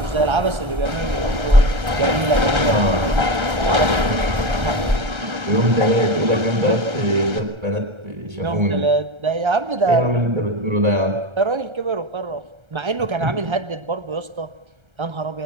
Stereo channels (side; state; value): left; late; 1.3 ms